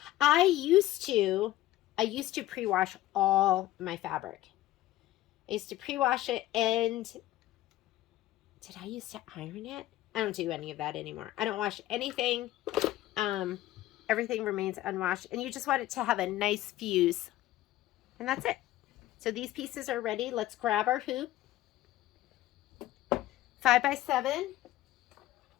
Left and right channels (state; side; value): quieter; right; 15.2 dB